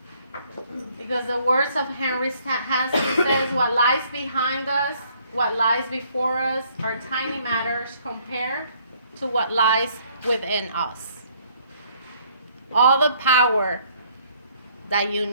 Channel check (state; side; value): inverted; both; correlation -0.63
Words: Because the words of Henry Hansky says, what lies behind us, what lies before us are tiny matters compared to what lies within us. All the power that you